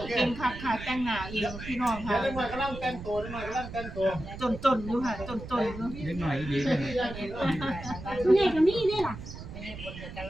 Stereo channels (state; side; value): noise; right; rumble, 11 dB below the sound